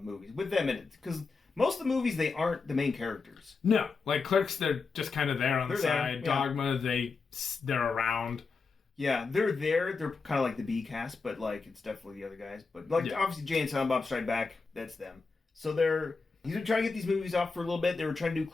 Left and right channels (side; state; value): right; quieter; 4.5 dB